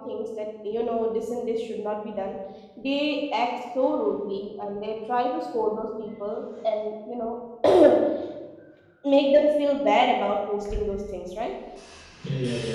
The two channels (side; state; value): both; identical; correlation 1.00